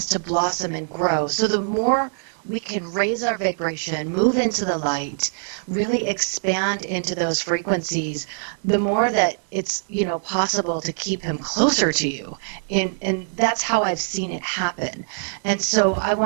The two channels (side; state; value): left; silent; digital silence